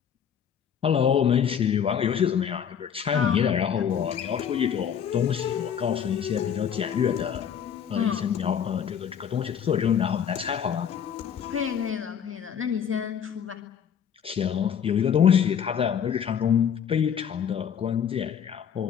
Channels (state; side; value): quieter; right; 8.2 dB